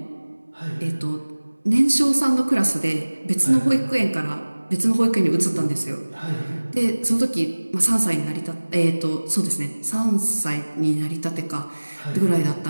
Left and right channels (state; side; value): inverted; both; correlation -1.00